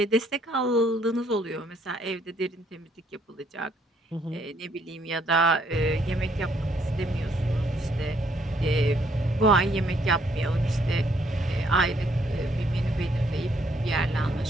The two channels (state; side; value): normal; both; correlation 0.68